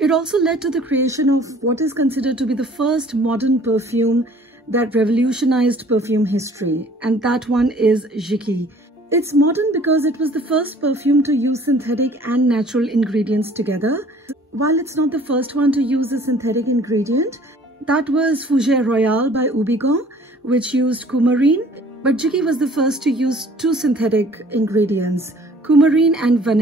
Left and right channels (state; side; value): normal; both; correlation 0.53